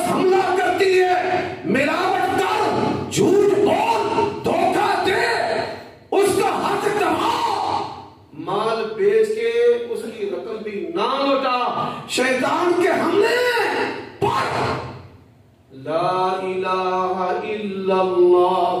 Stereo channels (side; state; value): both; identical; correlation 1.00